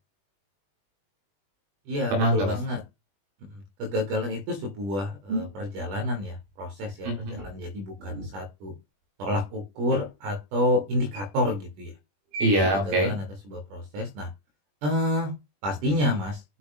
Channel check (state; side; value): late; left; 20 ms